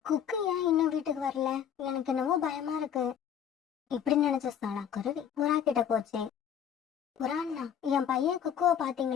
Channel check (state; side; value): quieter; right; 8.8 dB